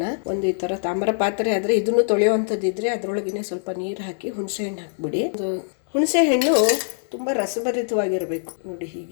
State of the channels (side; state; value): right; silent; digital silence